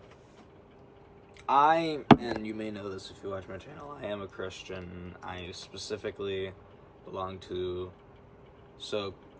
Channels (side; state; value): both; identical; correlation 1.00